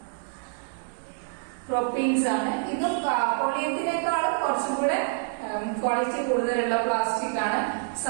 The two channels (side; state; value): left; silent; 60 dB below the other